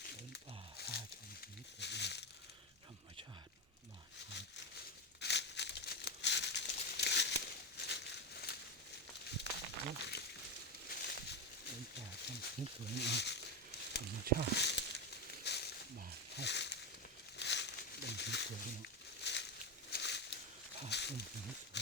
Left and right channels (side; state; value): both; normal; correlation 0.12